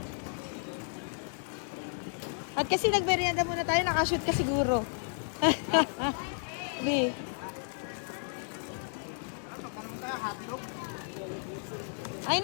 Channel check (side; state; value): right; silent; 56 dB below the other